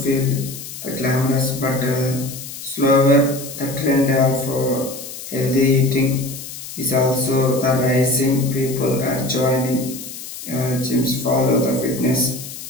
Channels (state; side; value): noise; left; hiss, 11 dB below the sound